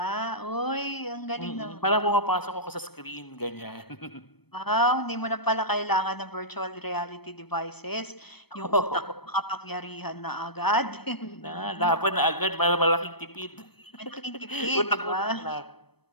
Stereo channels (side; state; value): right; late; 0.97 ms